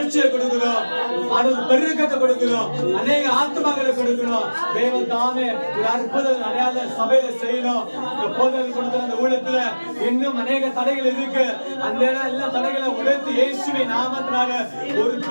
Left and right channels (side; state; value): both; inverted; correlation -1.00